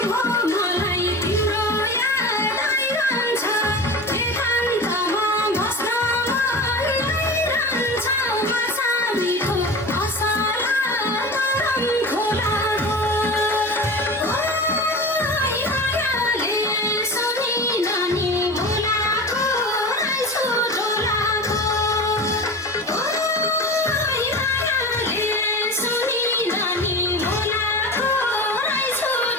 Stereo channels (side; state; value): both; normal; correlation 0.31